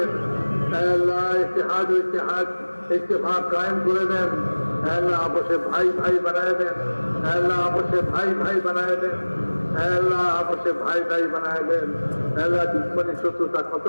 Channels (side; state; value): both; inverted; correlation -1.00